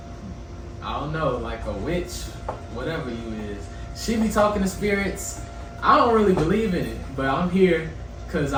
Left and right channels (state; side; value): identical; both; correlation 1.00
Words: like a witch, whatever you is. She be talking to spirits. I don't really believe in it, but I'm here because